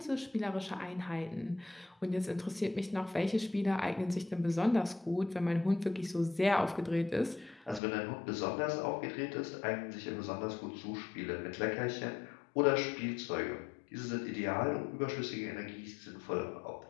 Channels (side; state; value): right; drops out; at 7.8 s